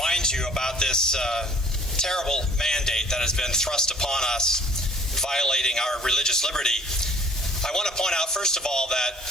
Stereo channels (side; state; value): both; normal; correlation 0.54